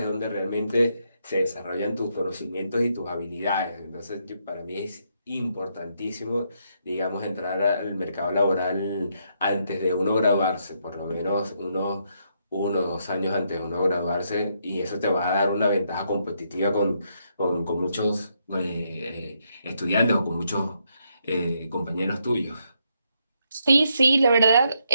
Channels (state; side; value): inverted; both; correlation -0.77